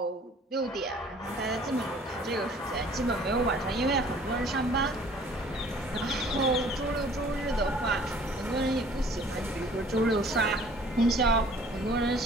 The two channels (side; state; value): both; normal; correlation 0.53